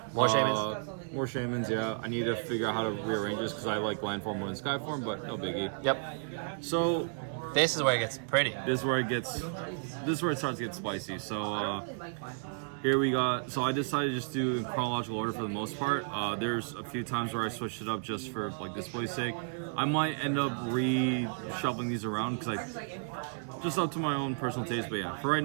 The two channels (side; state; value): left; silent; digital silence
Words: More Shamans. More Shamans, yeah. I need to figure out how to rearrange this because I like land form more than sky form, but no biggie. Yep. So This is where it gets pretty. this is where it starts to get spicy. So here we got. So I decided to just do in chronological order for the most part. There's a few times where I switched it up just for like display's sake. I might end up reshuffling these around because I just up to my own personal taste. But yeah, for right